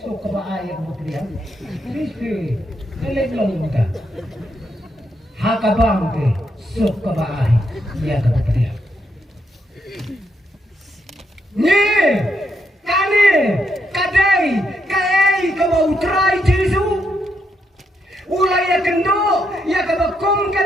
sok kabaai ya kabapediang biske kelek long muta hakabang te sok kabaai ya kabapediang ni kane kadai kai kabau trai Jesu ulai ya kendo ya kabakom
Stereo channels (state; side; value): normal; both; correlation 0.79